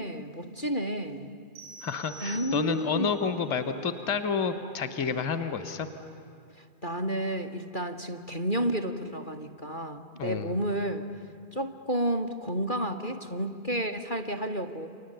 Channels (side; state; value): right; late; 2.4 ms